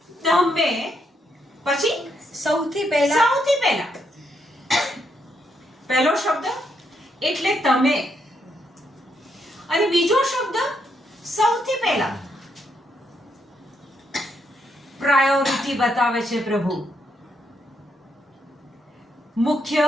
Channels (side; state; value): both; normal; correlation 0.77